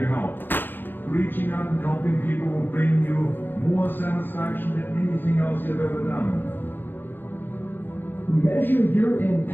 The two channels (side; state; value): right; late; 0.094 ms